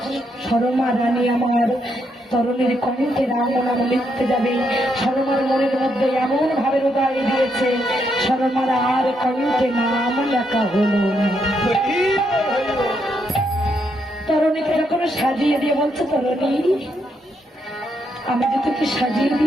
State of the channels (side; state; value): both; normal; correlation 0.78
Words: সরমা রানী আমার তরুণীর কণ্ঠে রাম নাম লিখতে যাবে, সরমার মনের মধ্যে এমন ভাবে হৃদয় দিয়েছে, সরমার আর কণ্ঠে নাম লেখা হলো না। তরুণীকে যখন সাজিয়ে দিয়ে বলছে, তরুণী আমি যে তোকে সাজিয়ে